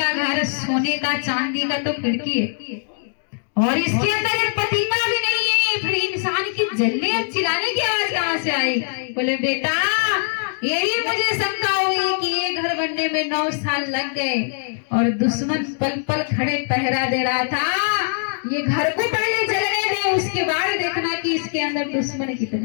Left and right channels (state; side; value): silent; right; digital silence